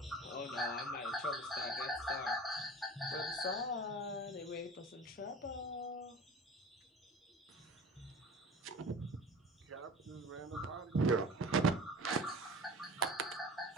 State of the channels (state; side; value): normal; both; correlation 0.38